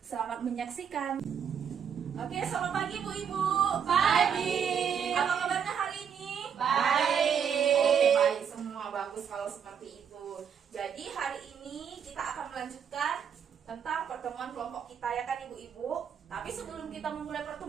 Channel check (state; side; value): quieter; left; 7.7 dB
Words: Selamat menyaksikan. Oke, selamat pagi Bu-Ibu. Pagi. Apa kabarnya hari ini? Baik. Oke, baik semua, bagus kalau seperti itu. Jadi hari ini kita akan melanjutkan tentang pertemuan kelompok kita, ya kan Ibu-Ibu. Tapi sebelum kita memulai